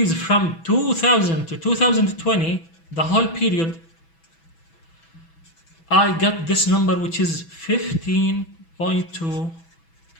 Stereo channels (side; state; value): right; late; 6.1 ms